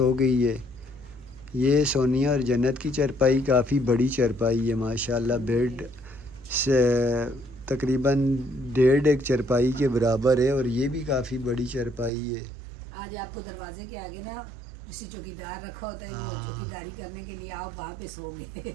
गई है। ये सोनिया और जन्नत की चारपाई काफ़ी बड़ी चारपाई है माशाल्लाह। बेड से तकरीबन 1.5 चारपाई के बराबर है और ये भी काफ़ी बड़ी चारपाई है। आज आपको दरवाजे के आगे ना किसी चौकीदार रखा होता है, हाँ। चौकीदारी करने के लिए आप वहाँ पे सो गए।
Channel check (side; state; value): left; drops out; at 12.1 s